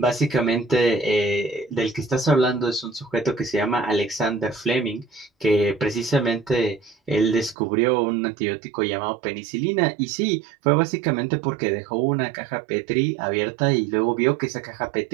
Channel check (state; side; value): drops out; left; at 7.6 s